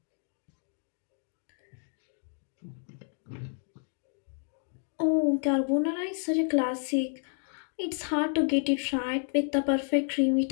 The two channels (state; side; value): silent; right; 57 dB below the other